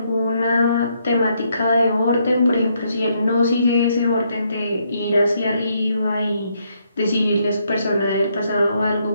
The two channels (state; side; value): inverted; both; correlation -0.74